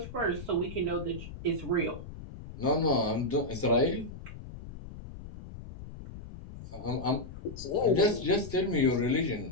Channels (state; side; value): noise; left; rumble, 13 dB below the sound